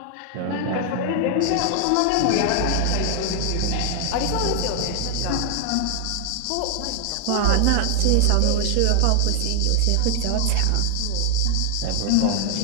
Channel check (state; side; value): different; both; correlation 0.00